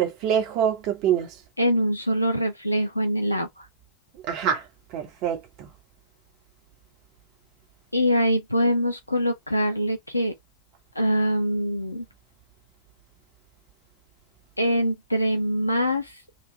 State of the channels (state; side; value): inverted; both; correlation -0.62